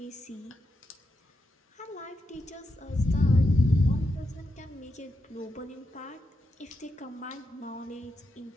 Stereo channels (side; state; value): both; normal; correlation 0.85